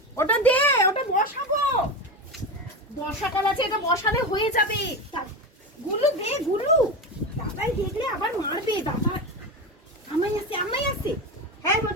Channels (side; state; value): both; normal; correlation 0.20